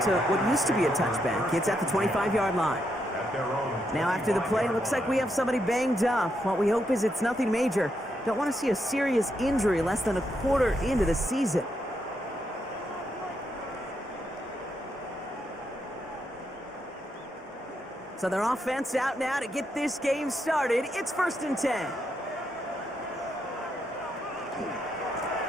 to what used to be a touchback. It's at the 25-yard line. Now after the play, looks like we have somebody banged up. What we hope is it's nothing major. Don't want to see a serious injury less than a quarter into the season. So their offense out now to get this game started. It's 1st and 10.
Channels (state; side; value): normal; both; correlation 0.80